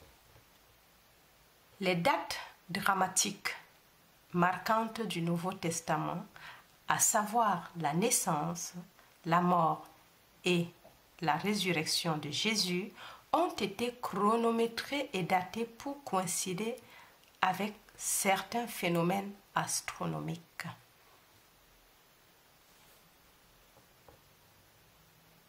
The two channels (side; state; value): both; identical; correlation 1.00